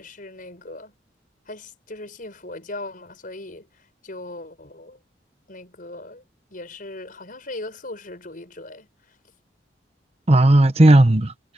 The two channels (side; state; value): both; normal; correlation 0.87